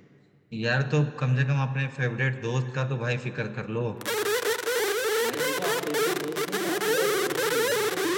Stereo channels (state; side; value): identical; both; correlation 1.00